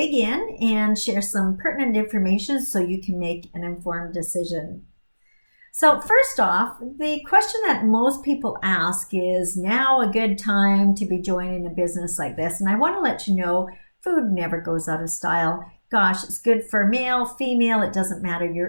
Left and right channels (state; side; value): inverted; both; correlation -1.00